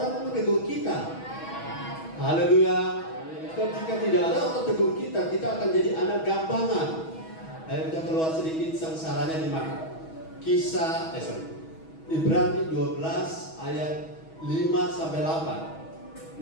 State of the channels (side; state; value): right; late; 6.2 ms